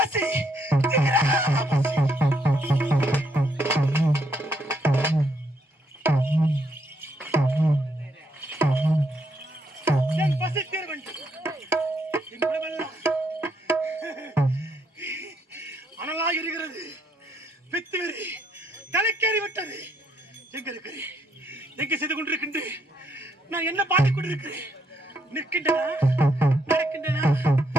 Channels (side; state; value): both; normal; correlation 0.74